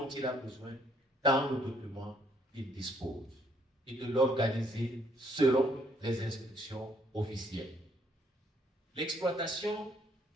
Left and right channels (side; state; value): both; normal; correlation 0.67